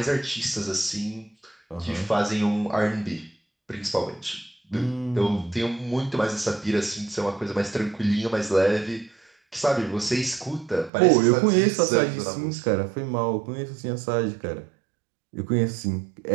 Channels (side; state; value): left; drops out; at 10.9 s